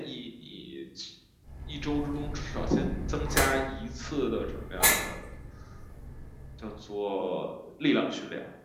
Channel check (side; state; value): both; identical; correlation 1.00